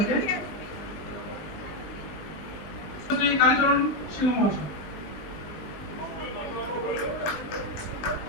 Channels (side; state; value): right; late; 20 ms